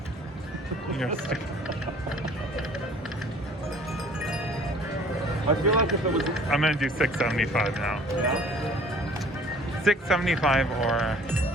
You're stick- I feel like if it was... I'm going to do 675 now. Yeah? 675 or...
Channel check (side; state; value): both; normal; correlation 0.51